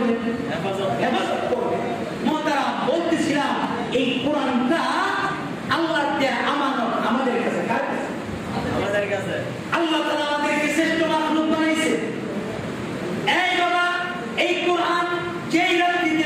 হেফাজত করবেন। মোহতারাম, বলতেছিলাম এই কোরআনটা আল্লাহর দেয়া আমানত আমাদের কাছে। কার কাছে? আমাদের কাছে। আল্লাহ তাআলা আমাদেরকে শ্রেষ্ঠ মাখলুক বানাইছে। এই বাবা, এই কোরআন যেই রাত্রিতে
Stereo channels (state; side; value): identical; both; correlation 1.00